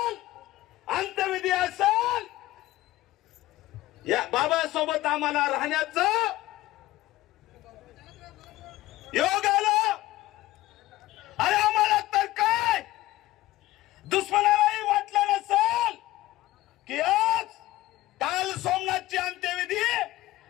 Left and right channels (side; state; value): right; quieter; 16.8 dB